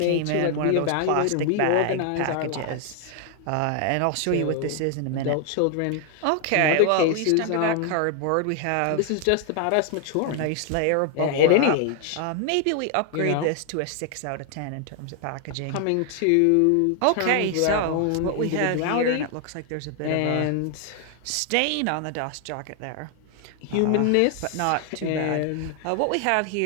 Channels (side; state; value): both; different; correlation 0.00